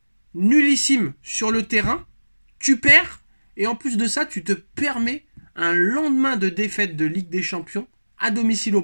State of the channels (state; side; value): inverted; both; correlation -1.00